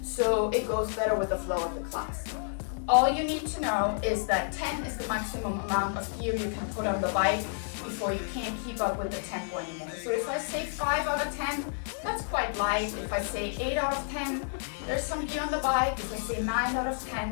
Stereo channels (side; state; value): right; silent; digital silence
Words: so it goes better with the flow of the class. All you need to know is that 10 is the maximum amount of gear you can put on the bike before you can't keep up with the tempo anymore. So if I say 5 out of 10, that's quite light. If I say 8 out of 10, there's some gear on the bike. If I say 9 out of